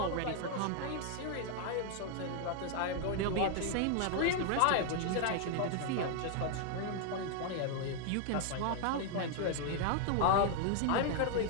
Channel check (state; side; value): different; both; correlation 0.00